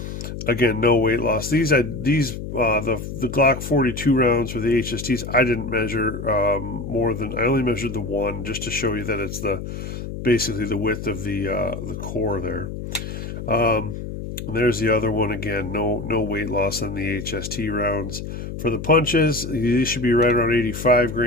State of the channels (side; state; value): left; noise; hum, 8 dB below the sound